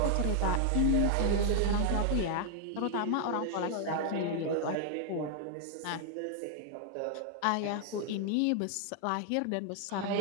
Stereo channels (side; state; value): both; different; correlation 0.00